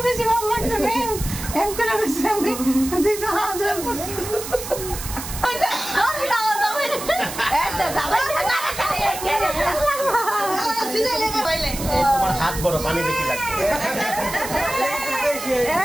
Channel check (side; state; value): right; noise; hiss, 9 dB below the sound